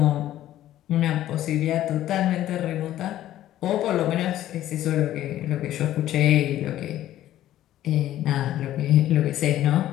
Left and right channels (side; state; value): right; quieter; 13.2 dB